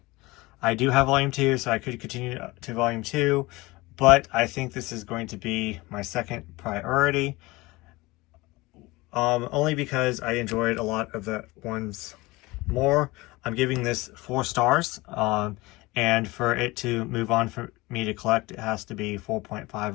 I do have volume 2, so I could continue to volume 2, but I think this is going to be my second priority, only because I enjoyed a lot of the ones more. I'm giving this 4 stars, and for it to move on for me to collect, it has to be 4.5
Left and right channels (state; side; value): quieter; right; 21.7 dB